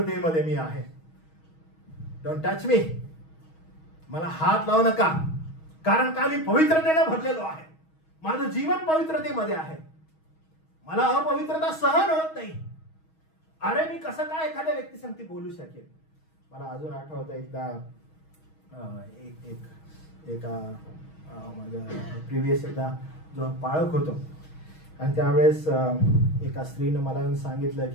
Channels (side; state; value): right; late; 6.3 ms